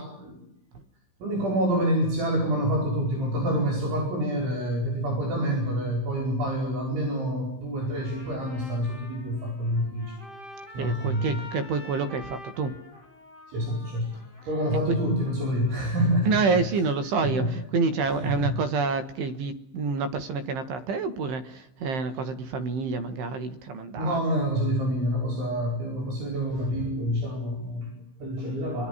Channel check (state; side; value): late; left; 15 ms